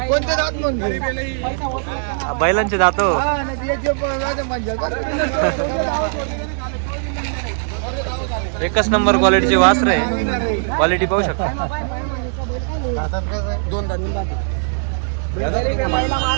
कोणते दात म्हणजे बैलांचे दात हो. एकच नंबर क्वालिटीचे वासर आहे. क्वालिटी पाहू शकता. दोन दात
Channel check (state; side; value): silent; left; digital silence